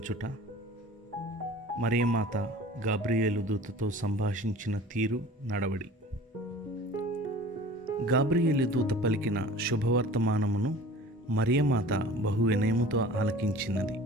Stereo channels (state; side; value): normal; both; correlation 0.43